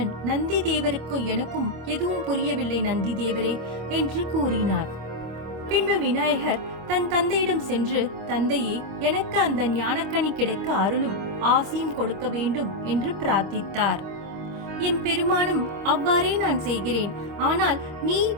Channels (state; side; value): late; left; 25 ms